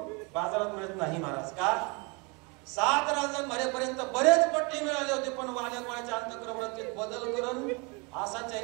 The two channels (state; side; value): quieter; left; 30.2 dB